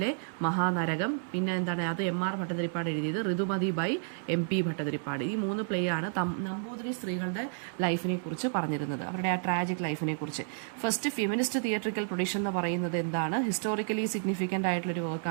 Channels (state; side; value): silent; left; 57 dB below the other